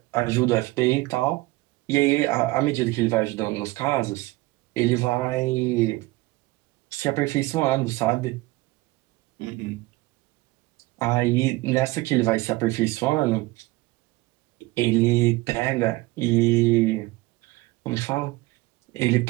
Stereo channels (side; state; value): left; quieter; 20.9 dB